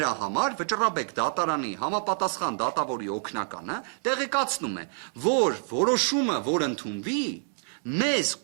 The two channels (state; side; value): silent; left; 60 dB below the other